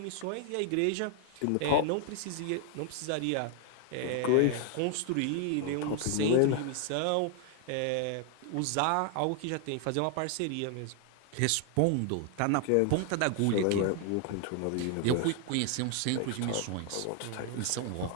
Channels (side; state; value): both; different; correlation 0.00